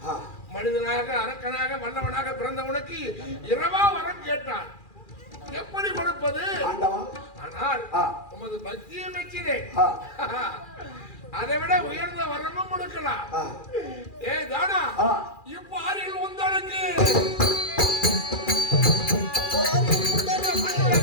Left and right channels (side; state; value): right; late; 2.4 ms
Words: மனிதனாக, அரக்கனாக, வல்லவனாக பிறந்தவனுக்கு இரவா வரம் கேட்டான். எப்படி கொடுப்பது? ஆனால் உமது பக்தியை மெச்சினேன். அதை விட உயர்ந்த வரமும் கொடுக்கலாம். ஏ தானா, இப்போ ஆறில் உங்களுக்கு